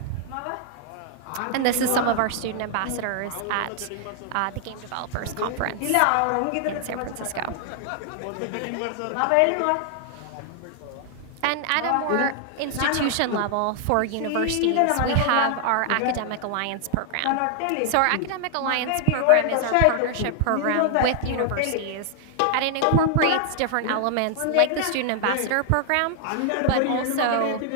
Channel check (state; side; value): different; both; correlation 0.00